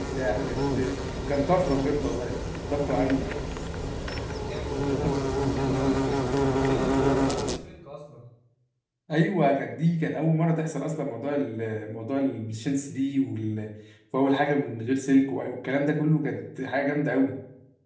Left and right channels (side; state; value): both; identical; correlation 1.00